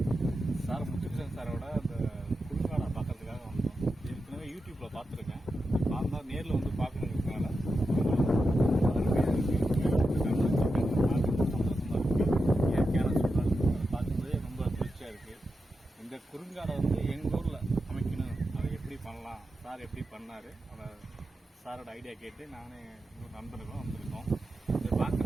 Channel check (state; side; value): normal; both; correlation 0.89